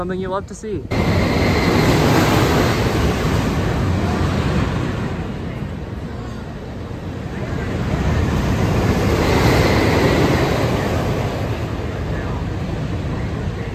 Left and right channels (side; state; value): both; identical; correlation 1.00